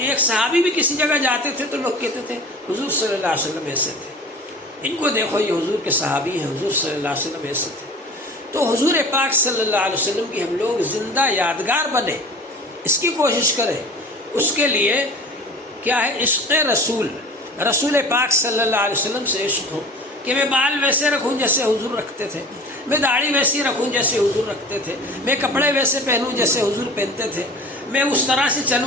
ایک صحابی بھی کسی جگہ جاتے تھے تو لوگ کہتے تھے حضور صلی اللہ علیہ وسلم ایسے تھے، ان کو دیکھو یہ حضور کے صحابی ہیں، حضور صلی اللہ علیہ وسلم ایسے تھے۔ تو حضور پاک صلی اللہ علیہ وسلم کی ہم لوگ زندہ یادگار بنے، اس کی کوشش کریں۔ اس کے لیے کیا ہے؟ عشق رسول، رسول پاک صلی اللہ علیہ وسلم سے عشق ہو کہ میں بال ویسے رکھوں جیسے حضور رکھتے تھے، میں داڑھی ویسی رکھوں جیسے حضور رکھتے تھے، میں کپڑے ویسے پہنوں جیسے حضور پہنتے تھے، میں اس طرح سے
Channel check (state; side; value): normal; both; correlation 0.40